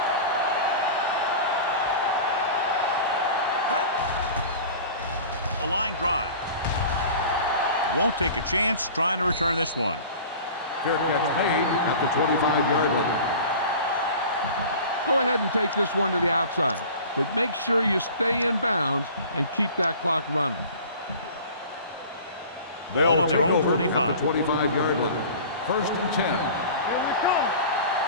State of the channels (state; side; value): inverted; both; correlation -0.40